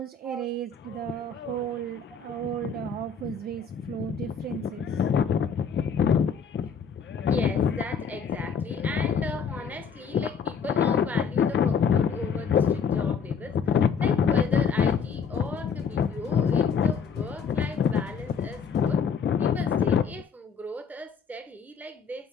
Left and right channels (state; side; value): quieter; right; 5.9 dB